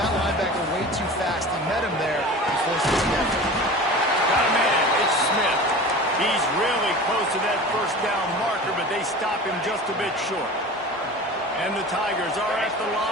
linebacker way too fast. He met him there and forced his step. Got a man. It's Smith. He's really close to that first down marker, but they stop him just a bit short. And the Tigers are at the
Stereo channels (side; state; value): both; normal; correlation 0.36